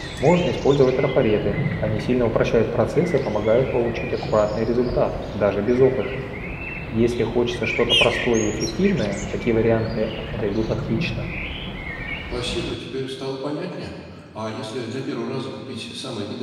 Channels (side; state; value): both; identical; correlation 1.00